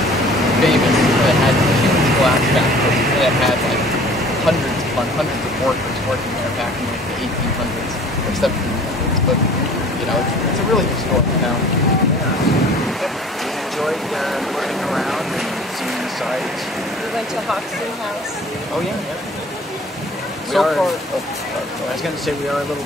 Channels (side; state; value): both; normal; correlation 0.49